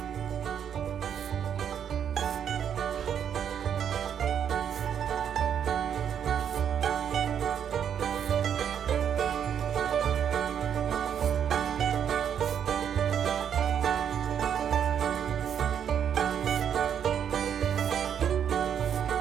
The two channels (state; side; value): quieter; left; 8.6 dB